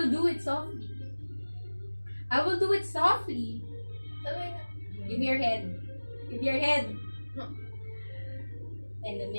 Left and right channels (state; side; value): inverted; both; correlation -1.00